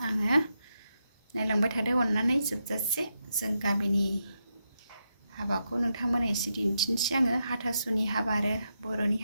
नायलांबाय थादो अननानै जोबजासे जों गामिनि हाबाखौ नोंथांमोननो एसे दिन्थिनोसै आङो हाथासुनि हाबा आरो बर'नि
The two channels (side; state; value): both; inverted; correlation -0.84